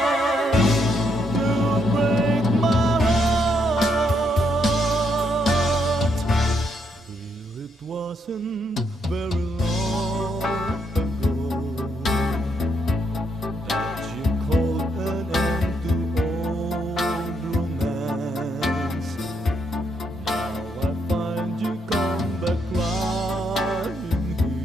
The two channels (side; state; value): both; normal; correlation 0.75